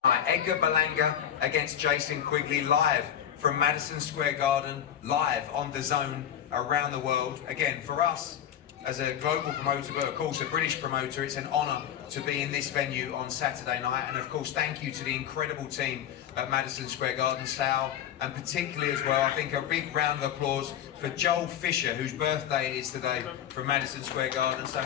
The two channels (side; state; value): right; quieter; 10.0 dB